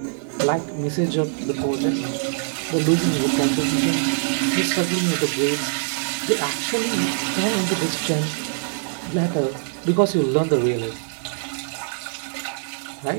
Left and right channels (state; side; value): silent; left; digital silence